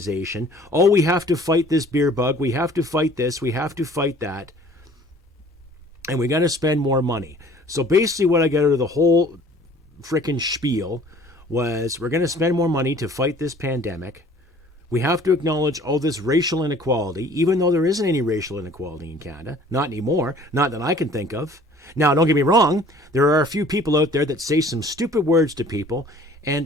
Oh, we have to fight this beer bug. We have to fight this. We have to fight that. And we got to spend more money. So basically what I got out of the whole frickin' spiel was we're going to spend more money to fight this pandemic. We have to acknowledge all this racial inequality, even though there isn't any racial inequality in Canada. Not anymore. Not that I can think of. Now, don't get me wrong. There are a few people out there that say some stupid words to people, and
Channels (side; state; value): both; normal; correlation 0.51